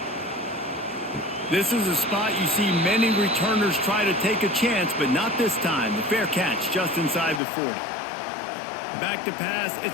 This is a spot you see many returners try to take a chance, but not this time. The fair catch just inside the 40. Back to pass,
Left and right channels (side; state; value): right; drops out; at 7.4 s